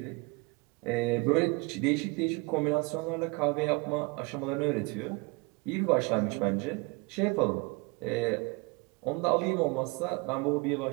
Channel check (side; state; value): left; quieter; 27.9 dB